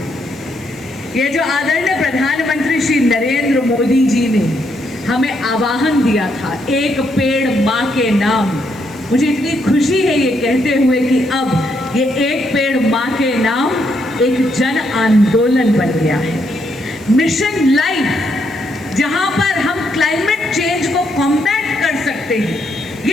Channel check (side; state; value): right; noise; hiss, 24 dB below the sound